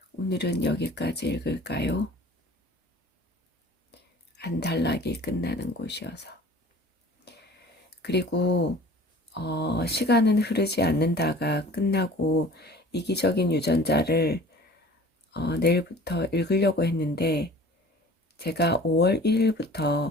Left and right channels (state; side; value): normal; both; correlation 0.45